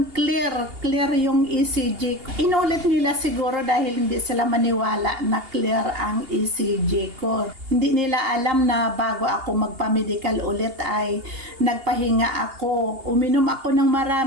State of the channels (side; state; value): left; late; 2.8 ms